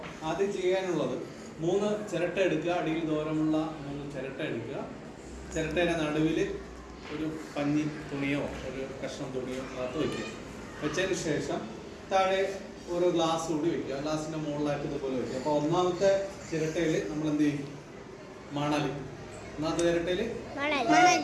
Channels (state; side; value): identical; both; correlation 1.00